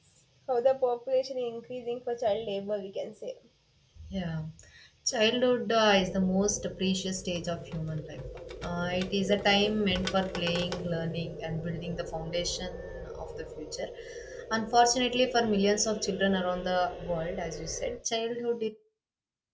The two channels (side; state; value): both; identical; correlation 1.00